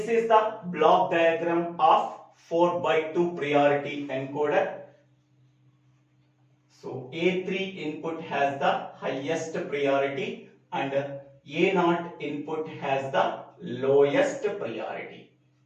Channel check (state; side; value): identical; both; correlation 1.00